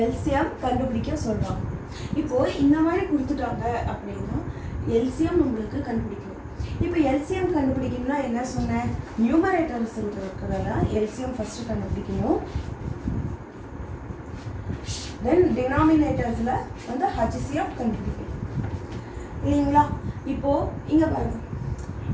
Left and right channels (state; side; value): identical; both; correlation 1.00